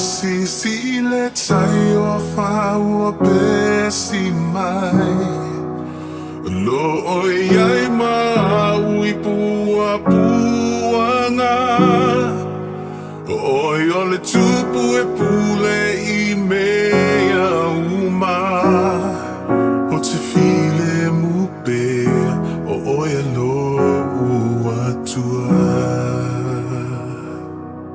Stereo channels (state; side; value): identical; both; correlation 1.00